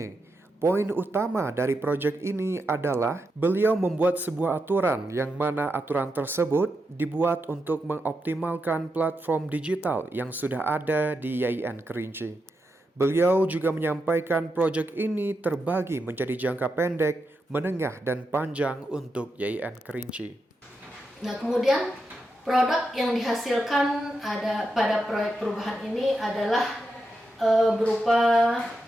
Poin utama dari proyek ini adalah beliau membuat sebuah aturan yang mana aturan tersebut dibuat untuk mengoptimalkan platform digital yang sudah ada di YIN Kerinci. Beliau juga menyampaikan proyek ini terbagi menjadi jangka pendek, menengah, dan panjang untuk YIN Kerinci. Nah, kemudian produk yang dihasilkan pada proyek perubahan ini adalah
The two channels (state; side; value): normal; both; correlation 0.86